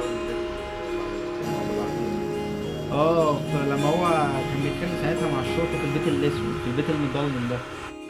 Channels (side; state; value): both; identical; correlation 1.00